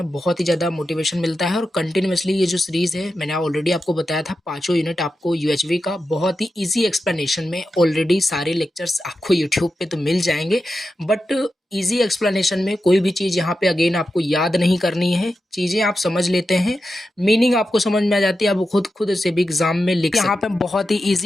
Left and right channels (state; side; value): normal; both; correlation 0.90